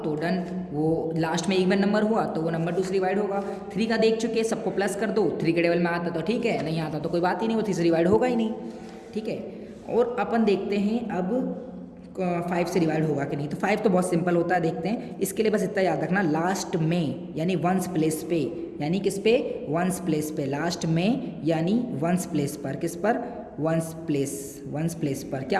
तो डन, वो लास्ट में इवन नंबर हुआ तो वो नंबर 2 से डिवाइड होगा। 3 का देख चुके, सबको प्लस कर दो, 3 के टेबल में आता तो ठीक है, नहीं आता तो कोई बात ही नहीं, वो 3 से डिवाइड होगा ही नहीं, ठीक है। और अपन देखते हैं अब 5 से डिवाइड होगा कि नहीं। तो 5 तो बहुत सिंपल होता है, देखते हैं। इसके लिए बस इतना याद रखना, लास्ट में यानी 1s प्लेस पे, यानी किस पे? 1s प्लेस पे, लास्ट में यानी 1s प्लेस पर, किस पर? 1s प्लेस पर क्या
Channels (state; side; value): identical; both; correlation 1.00